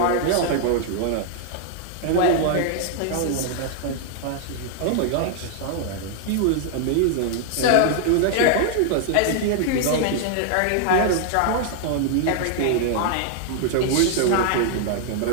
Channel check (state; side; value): different; both; correlation 0.00